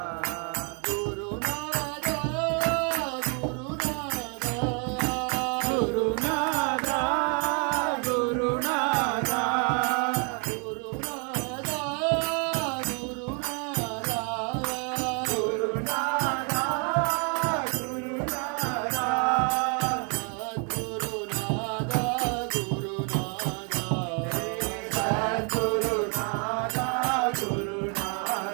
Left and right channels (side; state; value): left; quieter; 38.1 dB